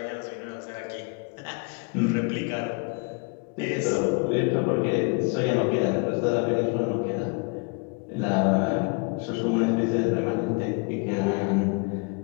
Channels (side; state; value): right; quieter; 32.8 dB